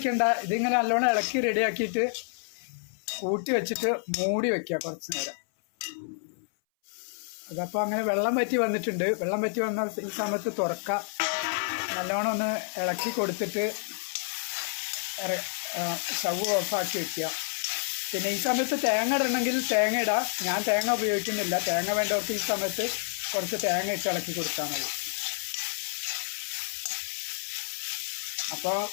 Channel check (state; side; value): silent; right; 59 dB below the other